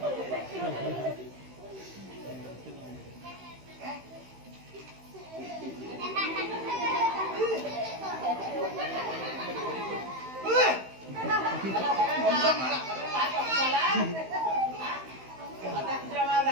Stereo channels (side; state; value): left; late; 16 ms